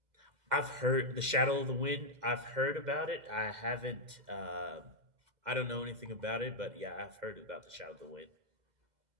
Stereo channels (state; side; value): late; left; 2.0 ms